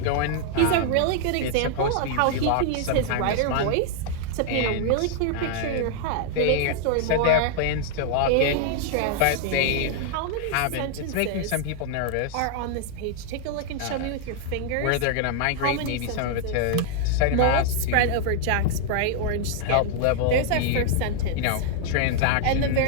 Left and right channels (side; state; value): both; different; correlation -0.01